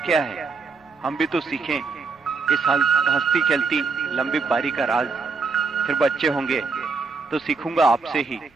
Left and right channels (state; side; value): quieter; left; 4.5 dB